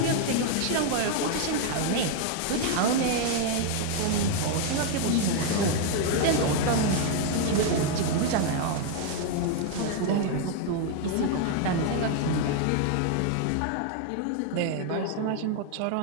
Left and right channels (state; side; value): different; both; correlation 0.00